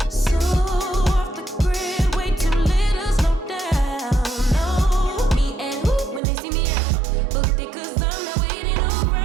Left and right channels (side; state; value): left; drops out; at 6.2 s